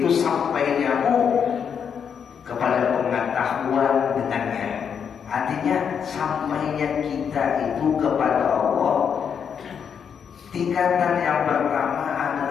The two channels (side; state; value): right; quieter; 7.3 dB